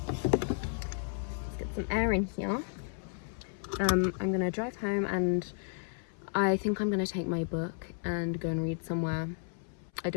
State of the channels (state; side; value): silent; right; 56 dB below the other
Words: Let's get some air in here. I'm gonna drive home, and I think I'm gonna take my book and go and read somewhere. I